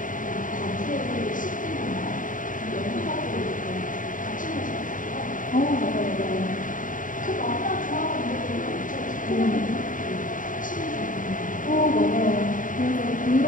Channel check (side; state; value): right; late; 0.38 ms